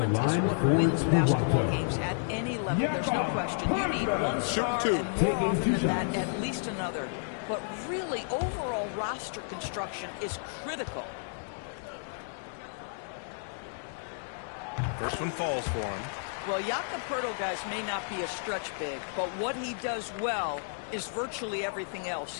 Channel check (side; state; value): right; silent; digital silence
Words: is what wins basketball games at any level. There's no question. You need one star and more often than that, at least another. But really, overall roster construction is critical. First one falls for him. Well, Jakob Poeltl, guys, may not be a stretch big, but what he does well is virtually everything else.